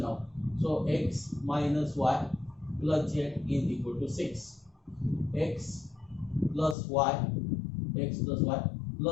now. So x minus y plus z is equal to 6. X plus y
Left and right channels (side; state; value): right; drops out; at 6.8 s